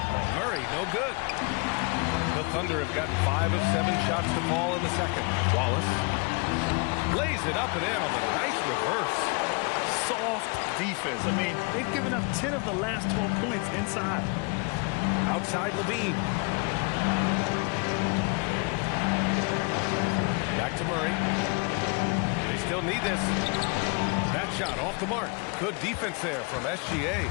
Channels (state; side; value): quieter; right; 32.3 dB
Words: Murray, no good. The Thunder have got 5 of 7 shots to fall in the second. Wallace lays it up and in on the nice reverse. Soft defense. I mean, they've given up 10 of the last 12 points inside. Outside LaVine. Back to Murray. They still need this. That shot off the mark. Good defense there from SGA.